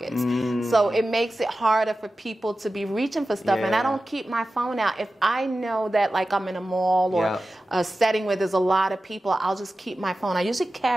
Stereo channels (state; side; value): normal; both; correlation 0.94